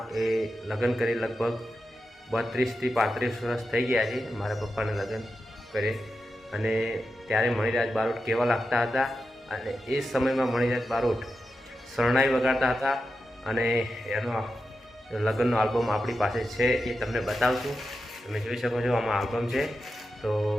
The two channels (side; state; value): both; normal; correlation 0.90